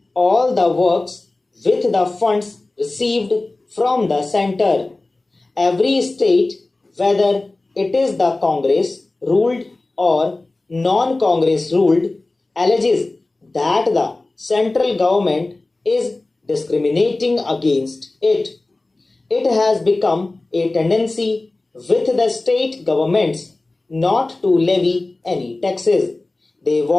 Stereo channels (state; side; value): quieter; right; 3.1 dB